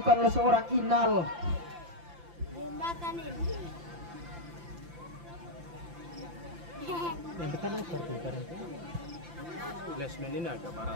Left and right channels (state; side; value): late; left; 5.8 ms